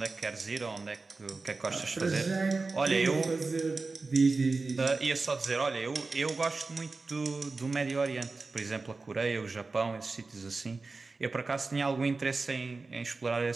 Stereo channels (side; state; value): left; quieter; 3.8 dB